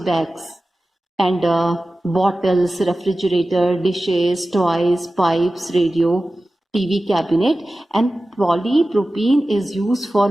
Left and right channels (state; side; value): normal; both; correlation 0.95